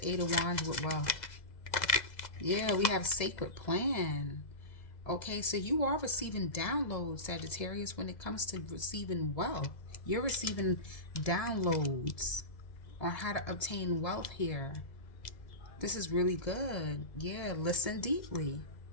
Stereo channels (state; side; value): late; right; 2.0 ms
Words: Eight of Wands with wealth? Yeah, we have sacred plan. Okay, so you are receiving downloads, Sagittarius, when it comes to receiving wealth. You're receiving downloads on how to obtain wealth here. This is really good. Yeah, listen deeply.